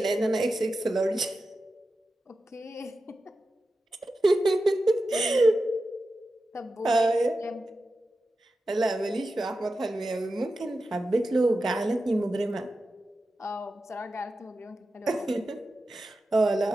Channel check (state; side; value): normal; both; correlation 0.92